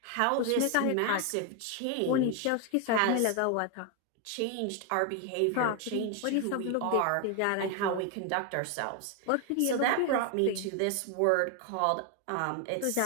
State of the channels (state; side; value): different; both; correlation 0.01